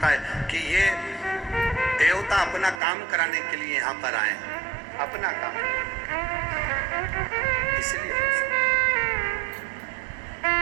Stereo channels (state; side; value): drops out; left; at 2.8 s